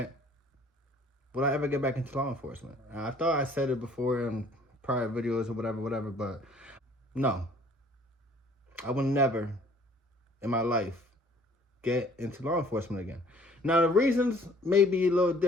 Will I ever get back into law enforcement? I thought I said it before in prior videos or whatever, but no. I will never in my life get into law enforcement again. Now, the reasons may be a little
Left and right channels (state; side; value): normal; both; correlation 0.56